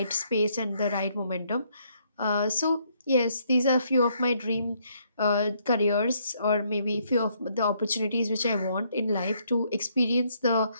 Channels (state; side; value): inverted; both; correlation -0.70